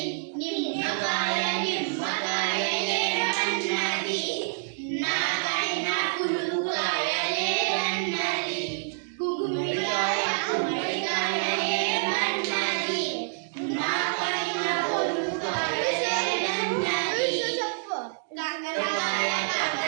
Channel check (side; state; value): left; silent; digital silence